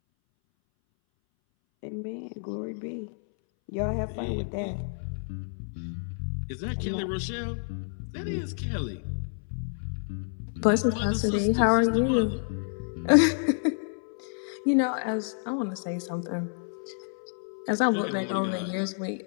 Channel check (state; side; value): silent; right; 59 dB below the other